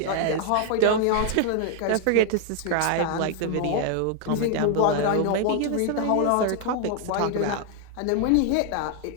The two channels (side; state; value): both; different; correlation 0.00